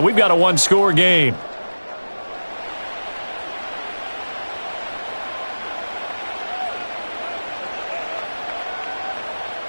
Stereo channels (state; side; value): inverted; both; correlation -1.00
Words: we've got a one-score game.